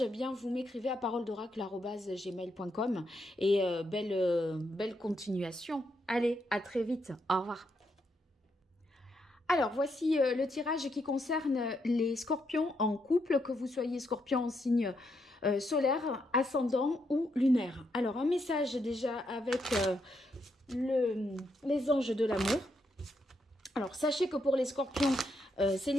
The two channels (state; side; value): normal; both; correlation 0.79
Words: eh bien vous m'écrivez à paroledoracle@gmail.com, et belle continuation. Allez, à très vite. Au revoir. Alors, voici le tirage qui concerne les scorpions en couple, que vous soyez scorpion en signe solaire, ascendant ou lunaire. Alors, un message déjà avec les anges de l'amour. Alors, sachez que pour les scorpions